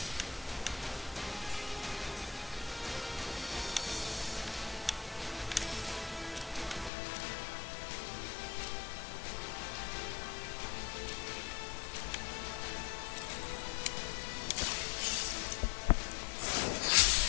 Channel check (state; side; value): drops out; right; at 6.9 s